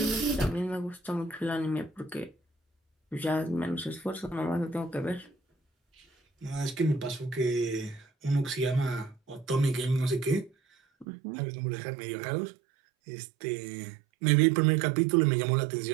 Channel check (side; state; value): left; drops out; at 11.1 s